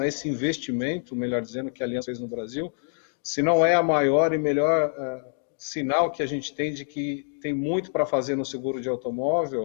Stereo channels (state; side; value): silent; right; digital silence